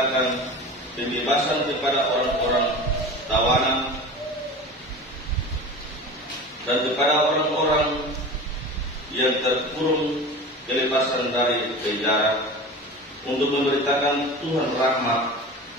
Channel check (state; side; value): normal; both; correlation 0.33